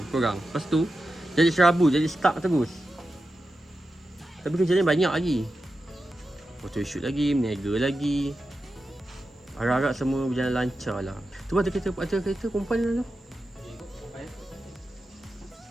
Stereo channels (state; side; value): normal; both; correlation 0.91